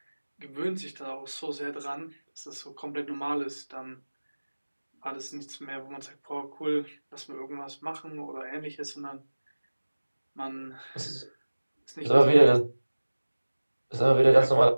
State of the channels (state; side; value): inverted; both; correlation -1.00